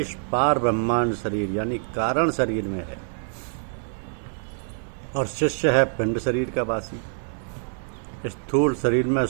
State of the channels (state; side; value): silent; left; digital silence